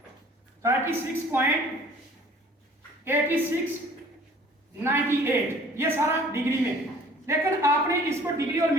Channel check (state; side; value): normal; both; correlation 0.52